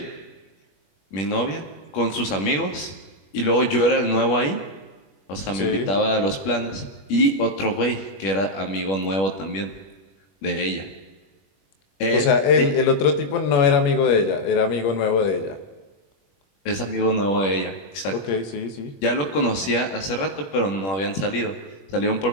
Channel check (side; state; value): right; late; 21 ms